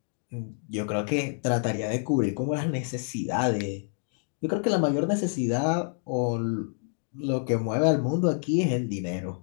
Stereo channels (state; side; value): silent; right; digital silence